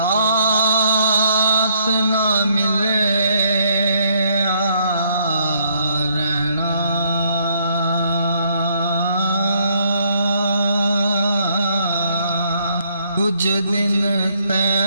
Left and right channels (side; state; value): both; inverted; correlation -0.69